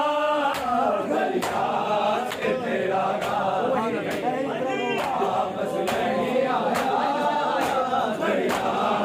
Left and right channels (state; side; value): identical; both; correlation 1.00